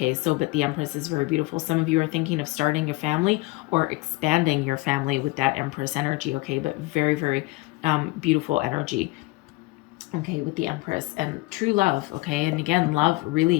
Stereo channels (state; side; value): quieter; right; 21.9 dB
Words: So, but the Empress is very beautiful. Some of you are thinking of starting a family or expanding your family with that Empress energy, okay? But very, very beautiful energy, okay, with the Empress and true love, okay? And again, love